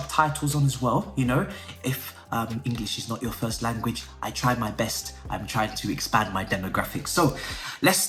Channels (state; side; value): identical; both; correlation 1.00